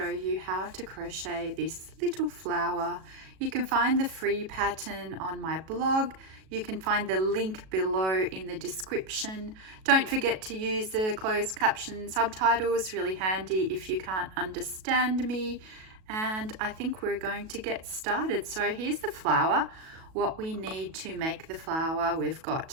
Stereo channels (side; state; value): left; late; 37 ms